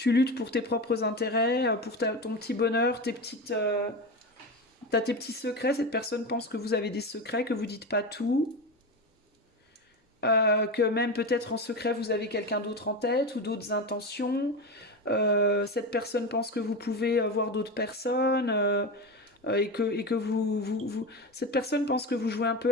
luttes pour tes propres intérêts, pour ton petit bonheur, t'as tes petits secrets. Cette personne pense que vous avez des secrets, que vous dites pas tout, que même peut-être en secret vous avez quelqu'un d'autre en tête ou d'autres intentions. Cette personne pense que vous pouvez voir d'autres personnes. Et que cette personne pense que vous jouez un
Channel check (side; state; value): both; normal; correlation 0.21